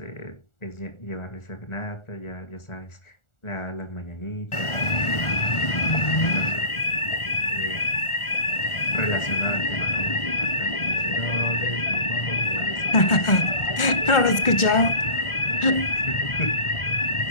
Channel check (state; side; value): late; right; 1.4 ms